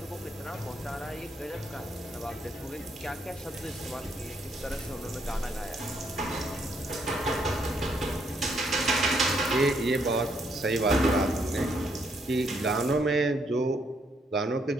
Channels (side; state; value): both; normal; correlation 0.73